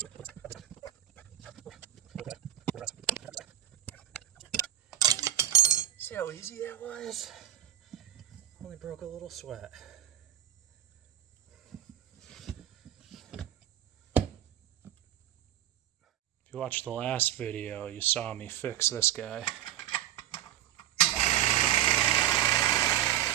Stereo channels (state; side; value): quieter; left; 12.3 dB